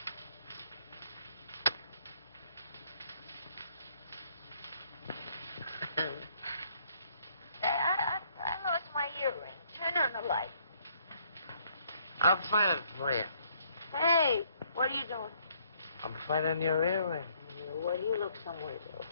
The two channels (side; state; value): both; inverted; correlation -0.67